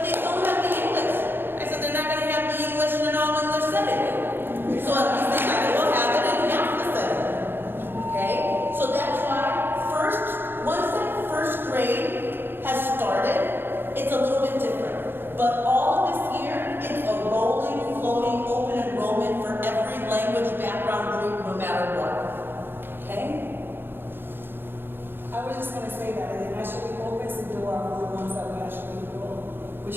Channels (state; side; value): late; left; 0.10 ms